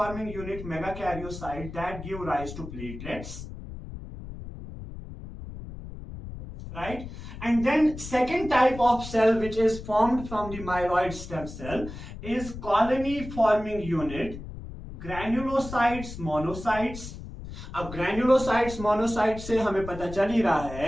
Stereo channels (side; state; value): left; noise; rumble, 11 dB below the sound